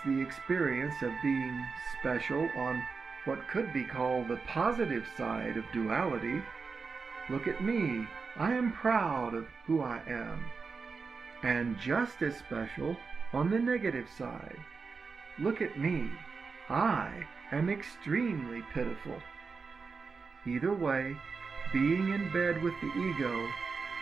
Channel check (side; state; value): left; quieter; 4.9 dB